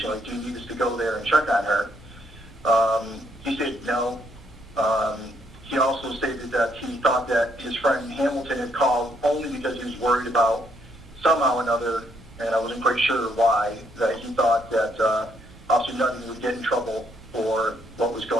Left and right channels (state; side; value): noise; right; rumble, 22 dB below the sound